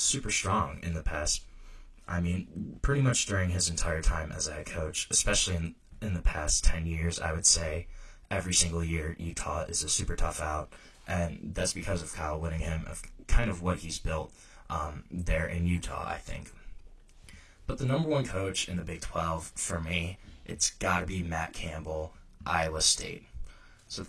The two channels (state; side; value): identical; both; correlation 1.00